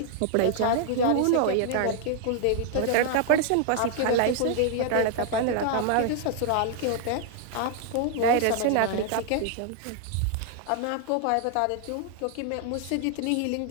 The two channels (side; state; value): both; different; correlation 0.00